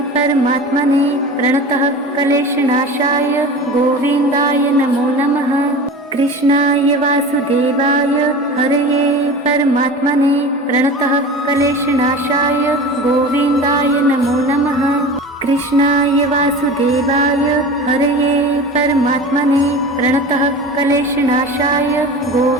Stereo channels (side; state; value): both; normal; correlation 0.34